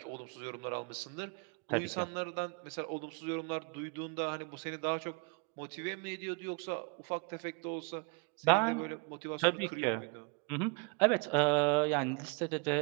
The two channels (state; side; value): quieter; left; 33.0 dB